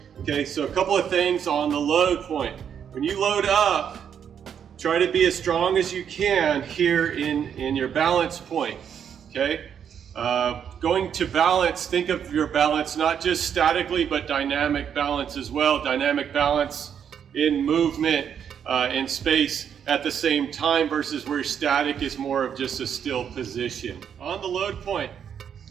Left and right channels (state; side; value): quieter; left; 8.2 dB